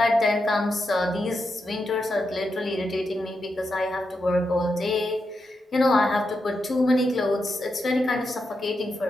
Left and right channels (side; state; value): both; normal; correlation 0.86